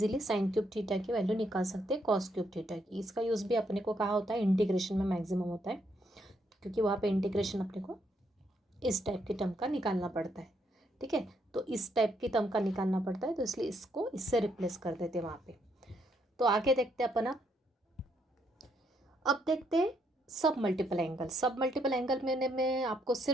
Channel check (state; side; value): normal; both; correlation 0.74